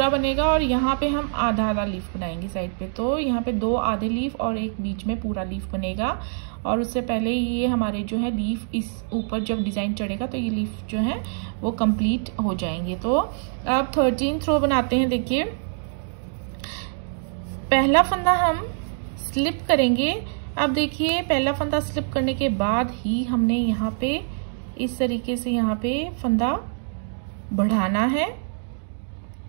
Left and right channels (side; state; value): left; silent; digital silence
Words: बनेगा और यहाँ पे हम आधा आधा लीफ बनाएंगे साइड पे। तो यहाँ पे 2 आधे लीफ और एक बीच में पूरा लीफ बनेगा। और उससे पहले ये हमारे जो है लीफ इस ऊपर जब डिज़ाइन चढ़ेगा तो ये लीफ जो है वो कंप्लीट हो जाएंगे। तो अब 13th रो बनाते हैं। देखिए पहला फंदा हम स्लिप करेंगे। अब देखिए पहला फंदा स्लिप करने के बाद ही हमने यहाँ पे इस तरीके से यहाँ पे फंदा बढ़ाना है।